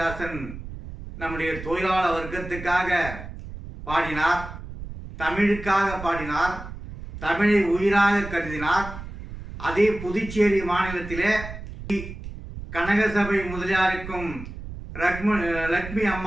நம்முடைய தொழிலாளர் வர்க்கத்துக்காக பாடினார், தமிழுக்காக பாடினார், தமிழை உயிராக கருதினார். அதே புதுச்சேரி மாநிலத்திலே கனகசபை முதலியாருக்கும் லட்சுமி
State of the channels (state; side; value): noise; right; rumble, 11 dB below the sound